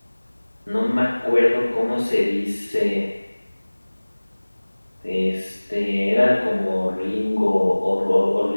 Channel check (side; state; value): both; inverted; correlation -1.00